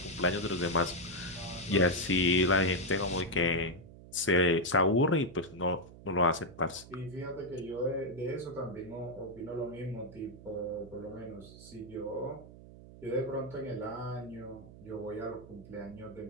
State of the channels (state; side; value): noise; right; hum, 18 dB below the sound